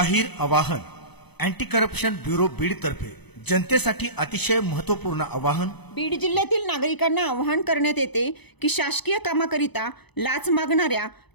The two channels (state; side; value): late; right; 0.99 ms